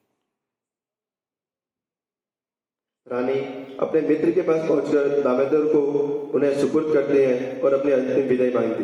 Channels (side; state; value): both; identical; correlation 1.00